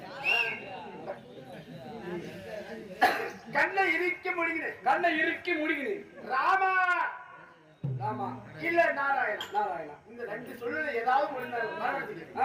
கண்ணை இறுக்கி முடிகிறேன். கண்ணை இறுக்கி முடிகிறேன். ராமா ராமா இல்ல நாராயணா. நாராயணா இந்த ரெண்டு சொல்லுல ஏதாவது ஒண்ணு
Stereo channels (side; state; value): both; identical; correlation 1.00